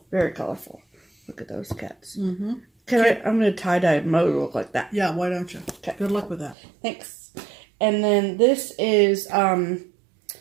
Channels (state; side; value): drops out; left; at 6.6 s